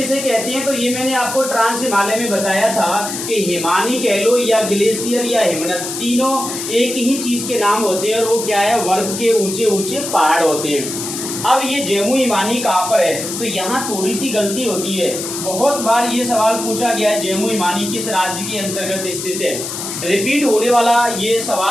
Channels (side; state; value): left; noise; hiss, 6 dB below the sound